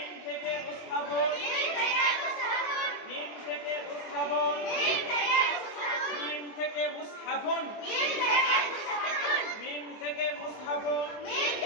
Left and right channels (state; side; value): late; right; 24 ms